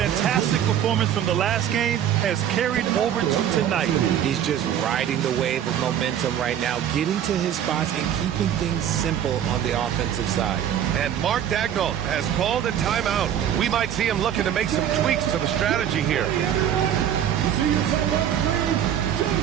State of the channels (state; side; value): quieter; left; 9.9 dB